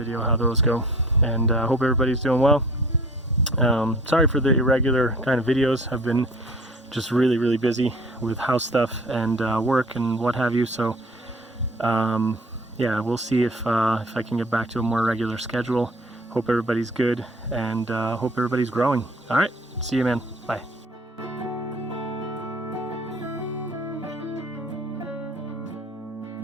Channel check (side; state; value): both; normal; correlation 0.49